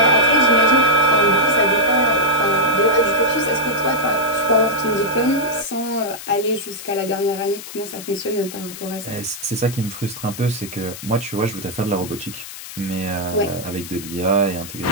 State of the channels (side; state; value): left; noise; hiss, 12 dB below the sound